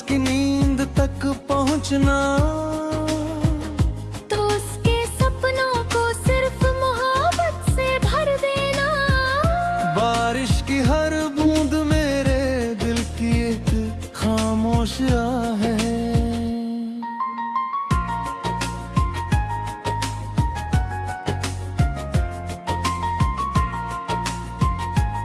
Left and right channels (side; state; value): both; identical; correlation 1.00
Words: नींद तक पहुँचना, तो उसके सपनों को सिर्फ मोहब्बत से भर देना। बारिश की हर बूंद मेरे दिल की एक खामोश आह है।